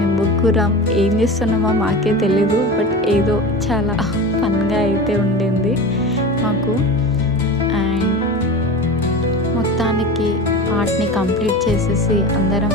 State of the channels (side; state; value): both; normal; correlation 0.30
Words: ముగ్గురం ఏం చేస్తున్నామో మాకే తెలీదు, బట్ ఏదో చాలా ఫన్గా అయితే ఉండింది మాకు. అండ్ మొత్తానికి ఆర్ట్ని కంప్లీట్ చేసేసి అందరం